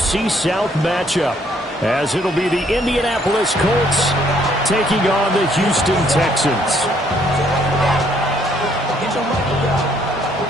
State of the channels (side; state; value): both; normal; correlation 0.67